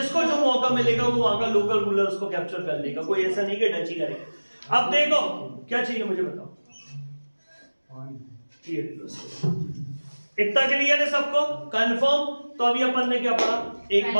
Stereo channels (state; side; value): inverted; both; correlation -1.00